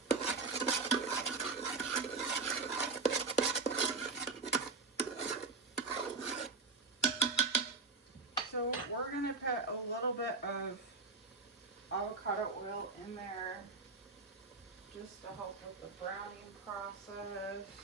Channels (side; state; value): left; quieter; 4.4 dB